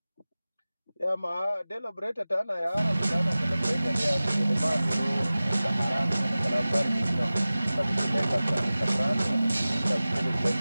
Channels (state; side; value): inverted; both; correlation -0.97